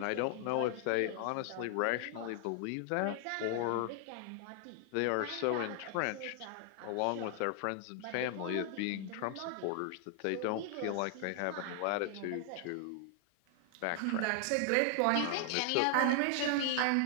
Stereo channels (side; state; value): both; different; correlation 0.00